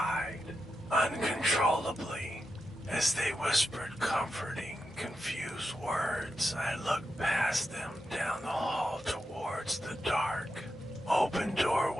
uncontrollably. As they whispered comforting, confused words, I looked past them down the hall towards the dark, open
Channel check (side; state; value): both; normal; correlation 0.87